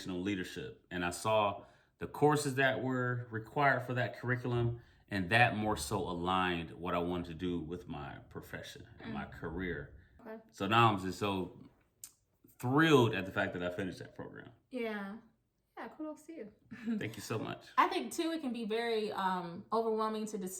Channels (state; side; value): identical; both; correlation 1.00